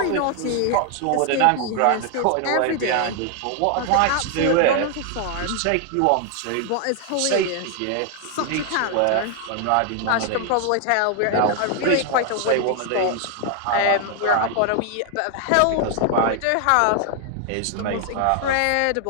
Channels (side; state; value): both; different; correlation 0.00